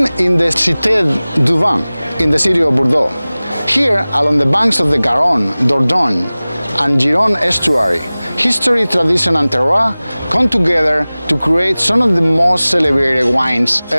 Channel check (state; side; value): inverted; both; correlation -0.99